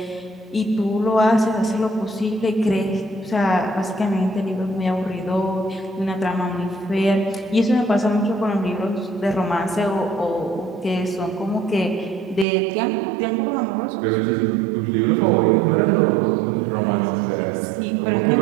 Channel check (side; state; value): left; drops out; at 12.5 s